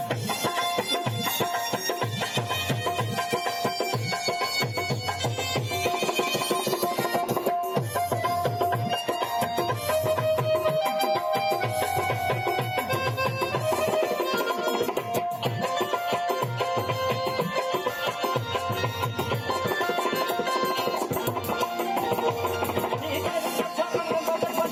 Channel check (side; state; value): both; identical; correlation 1.00